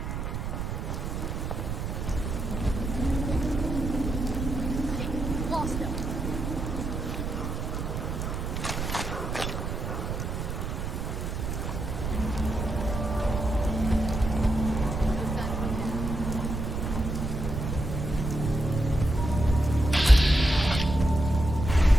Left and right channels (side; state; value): right; noise; rumble, 3 dB below the sound